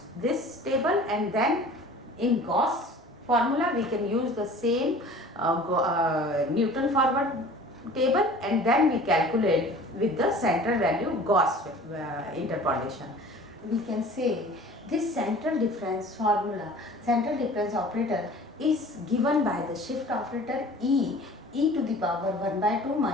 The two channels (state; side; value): normal; both; correlation 0.45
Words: this table, and then in Gauss formula we can use the same Newton forward table, and then we calculate with the central value Gauss interpolation. We can say this central difference formula, central difference operator, is given by the shift operator e to the power 1 by 2